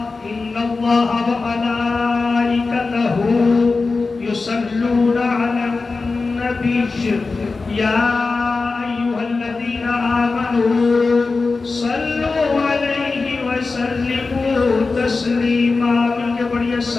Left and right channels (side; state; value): right; quieter; 4.0 dB